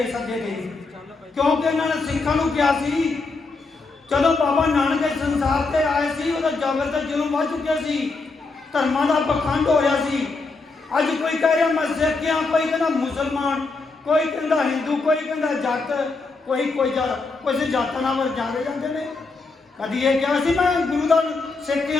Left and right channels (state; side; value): quieter; right; 3.8 dB